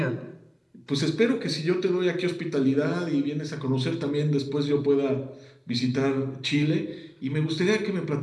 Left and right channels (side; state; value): both; identical; correlation 1.00